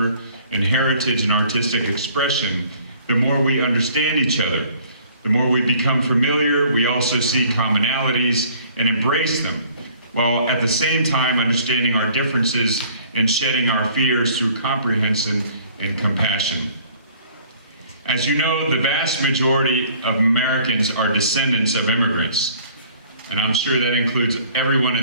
and heritage and artistic expression, the more we understand each other. The more we become familiar, we also see commonalities and embrace them, while at the same time understanding our differences and shedding our fears through comprehension and compassion. As you know, the vast majority of Americans are descendants of immigrants. And I'm sure that includes everyone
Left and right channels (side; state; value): both; inverted; correlation -0.55